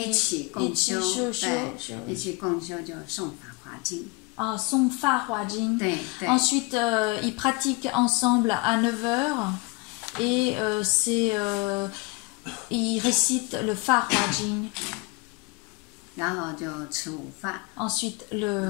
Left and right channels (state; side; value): quieter; right; 26.8 dB